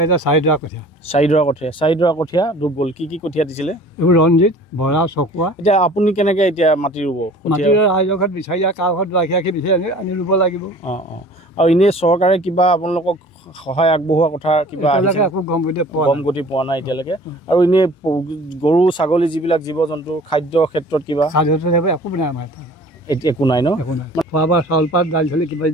এতিয়া 4 ডৰা কঠীয়া। 4 ডৰা কঠীয়া ডুব গ'ল। কি কঠীয়া দিছিলে? এইবোৰ ৰঞ্জিত, বৰা, চকুৱা। এতিয়া আপুনি কেনেকৈ এতিয়া মাটি ৰুব? মাটি ৰাইজৰ ঘৰত বিচাৰি কাৰ ঘৰত ৰাখি বিচাৰি আনি ৰুব লাগিব। আৰু এনেই চৰকাৰে কিবা আপোনালোকক সহায় আগবঢ়োৱা কথা কিবা একো গম গতি পোৱা নাই এতিয়ালৈকে? আৰু এনেই গৰু ছাগলী যিবিলাক জীৱ জন্তু খাদ্যৰ ক্ষেত্ৰত কিবা একো নাই আমাৰ এতিয়া একো নাই ন? খোৱা বোৱা চাউল পাত দাইল চালি কিবা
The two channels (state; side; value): normal; both; correlation 0.47